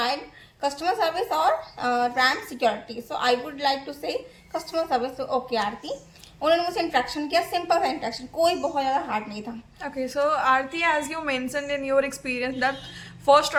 customer service or RAM security. So I would like to say customer service. So okay आरती, उन्होंने मुझसे interaction किया, simple सा इंट्रैक्शन, कोई बहुत ज़्यादा हार्ड नहीं था. Okay. So, Aarti, as you mentioned in your experience, that first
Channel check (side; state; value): both; identical; correlation 1.00